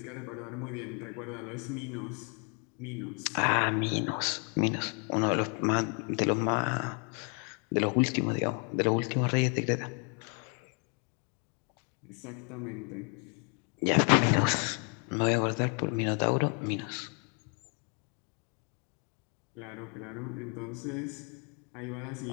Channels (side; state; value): right; quieter; 38.1 dB